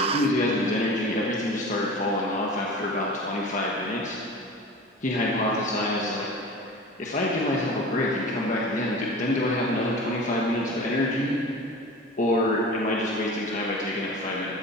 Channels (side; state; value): both; normal; correlation 0.36